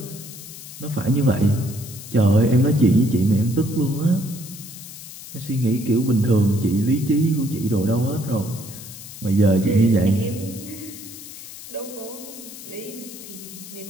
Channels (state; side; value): noise; left; hiss, 14 dB below the sound